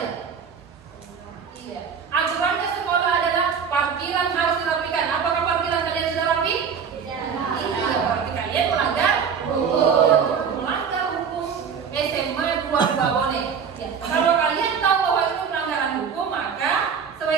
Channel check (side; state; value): left; quieter; 6.6 dB